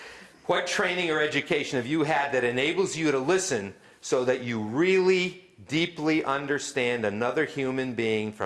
What training or education have you had that enables you to listen so that you really deeply understand another human being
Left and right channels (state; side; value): identical; both; correlation 1.00